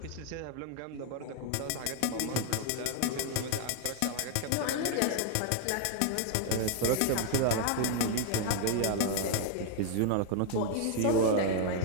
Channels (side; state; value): both; different; correlation 0.00